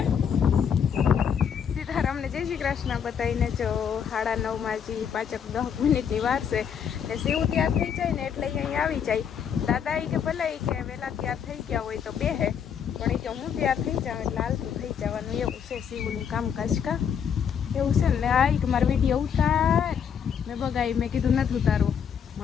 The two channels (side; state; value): right; quieter; 7.7 dB